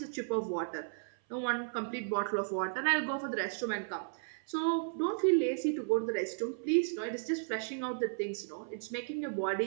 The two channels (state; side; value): silent; left; 55 dB below the other